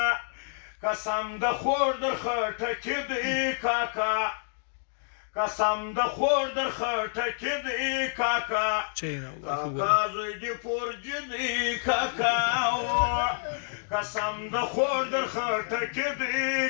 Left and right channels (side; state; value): right; silent; digital silence